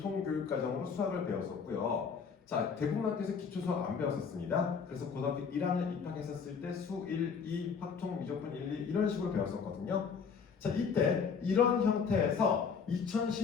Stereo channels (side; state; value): right; quieter; 6.0 dB